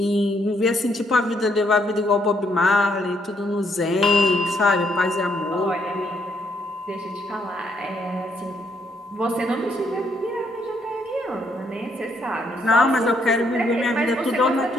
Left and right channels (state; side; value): normal; both; correlation 0.73